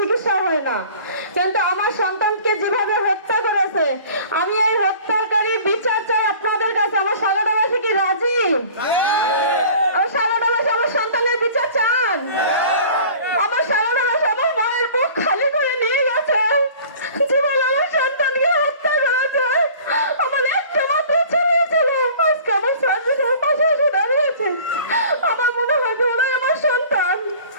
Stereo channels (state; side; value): inverted; both; correlation -0.46